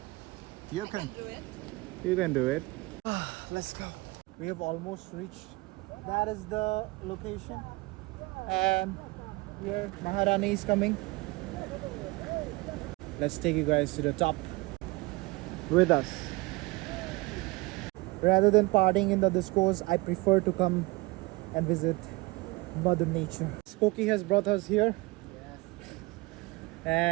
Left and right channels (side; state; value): left; quieter; 23.4 dB